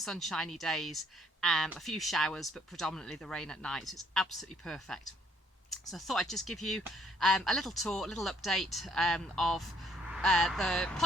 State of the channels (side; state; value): both; normal; correlation 0.66